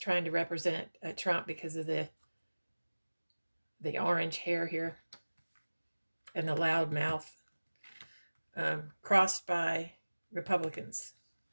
to represent Trump because of the orange hair here and the loud mouth. Crossed by Republicans.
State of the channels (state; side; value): inverted; both; correlation -1.00